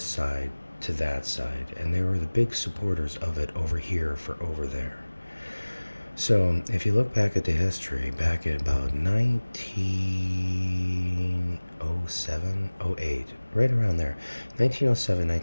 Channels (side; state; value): both; inverted; correlation -1.00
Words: side to that side, and they were the big supporters of it over here for over there. So, if you look back at the history, back at about 1907, '08, right around there, 1907,